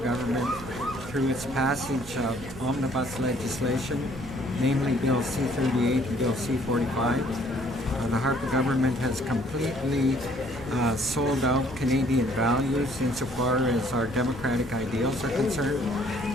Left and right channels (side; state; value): both; normal; correlation 0.61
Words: through its passage of omnibus legislation, namely Bill C-38 and Bill C-45. The Harper government has completely sold out Canadian values insofar as our democratic ideals are concerned,